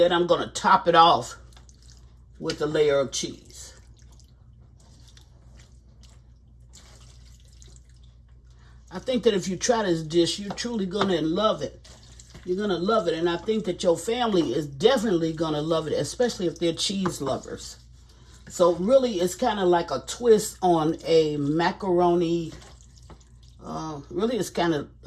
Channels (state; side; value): identical; both; correlation 1.00